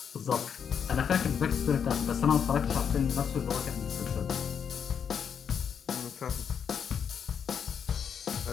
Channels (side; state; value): right; quieter; 7.5 dB